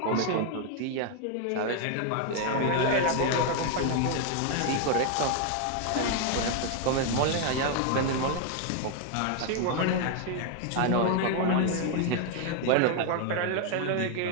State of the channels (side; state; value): both; different; correlation 0.00